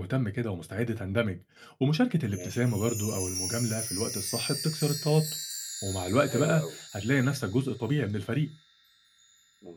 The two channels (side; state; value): both; identical; correlation 1.00